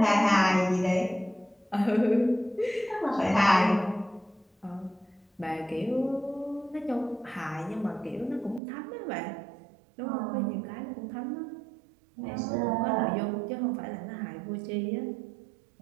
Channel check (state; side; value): drops out; left; at 8.6 s